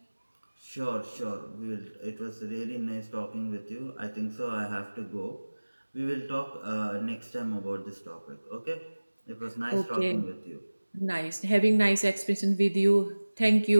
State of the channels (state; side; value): inverted; both; correlation -1.00